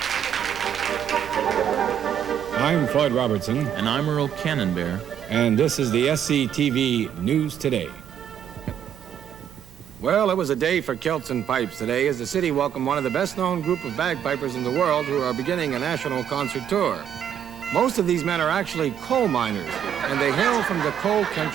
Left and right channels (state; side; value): quieter; left; 9.4 dB